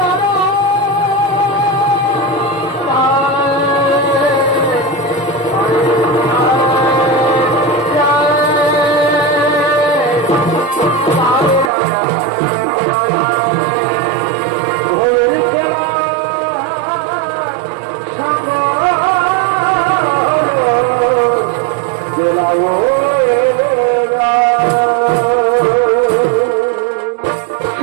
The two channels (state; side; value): drops out; left; at 11.7 s